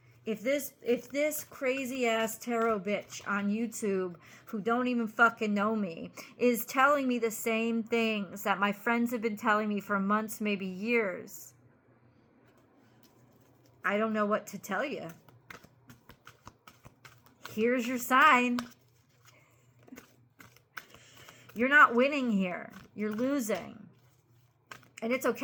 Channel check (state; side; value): identical; both; correlation 1.00